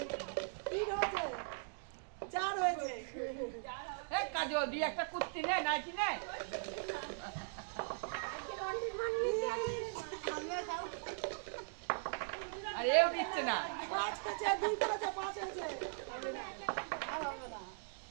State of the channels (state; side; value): silent; left; digital silence